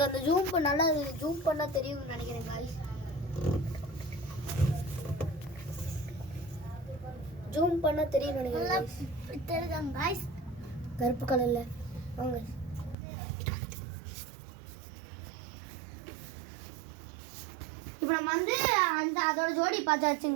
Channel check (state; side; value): drops out; left; at 13.0 s